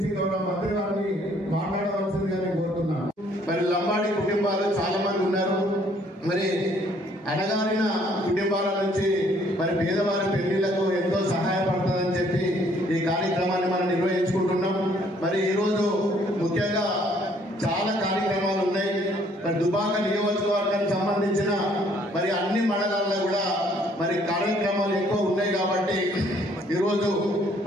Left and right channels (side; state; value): both; normal; correlation 0.63